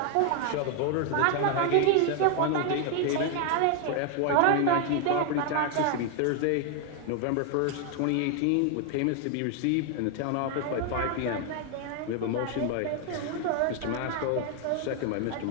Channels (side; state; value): both; different; correlation 0.00